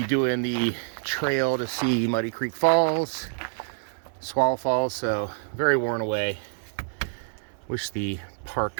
doing the trail to see Muddy Creek Falls, Swallow Falls, so very worn away. Wish the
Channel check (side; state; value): left; silent; 60 dB below the other